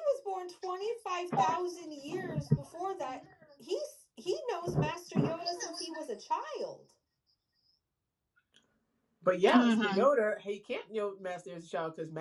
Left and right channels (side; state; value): both; identical; correlation 1.00